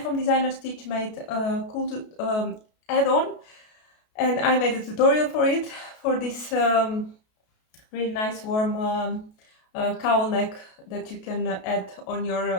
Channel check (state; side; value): late; right; 33 ms